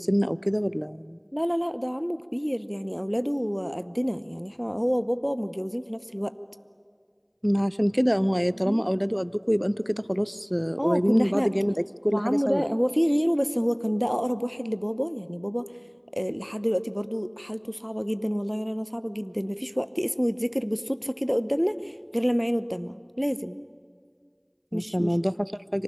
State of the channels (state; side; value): identical; both; correlation 1.00